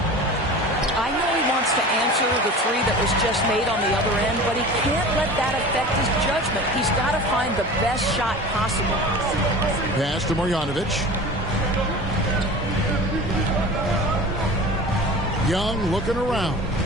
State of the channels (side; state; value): both; normal; correlation 0.36